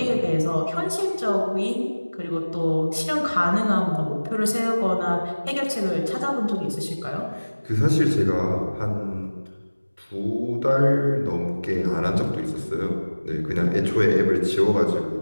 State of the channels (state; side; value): inverted; both; correlation -1.00